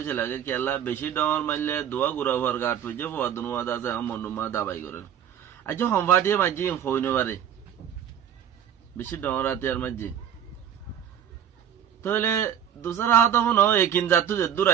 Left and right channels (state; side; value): quieter; left; 9.4 dB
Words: লাগে কেলা বেশি ডর মারলে দোয়া গুড়া হওয়ার গাট ফুজে ফোয়াদনুয়া আছে মনুমা দাবাই করে আজ হনফাটিয়ে মাঝে হইন পারে বেশি ডর আতিয়ার মাঝে তাহলে দুসরা হাত হনো একিন জাতু যে দূর